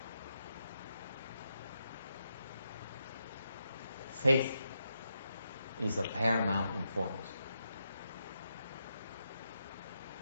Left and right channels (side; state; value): both; inverted; correlation -0.84